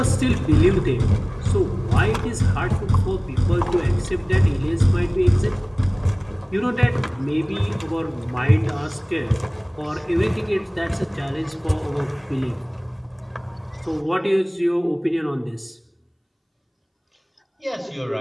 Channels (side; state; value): both; identical; correlation 1.00